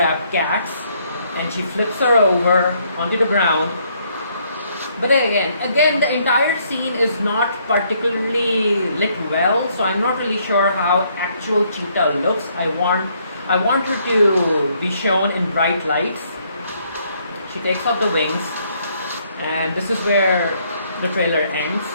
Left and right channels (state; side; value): inverted; both; correlation -0.69